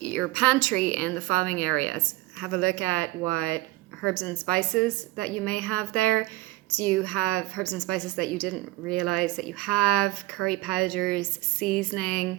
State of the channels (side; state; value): left; quieter; 19.5 dB